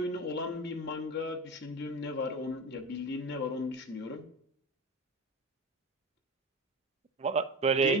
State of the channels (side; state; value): both; normal; correlation 0.27